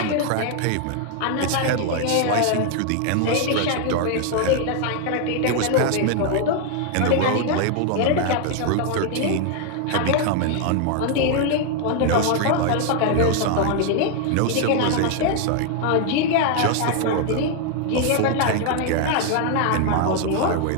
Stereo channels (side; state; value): both; different; correlation 0.00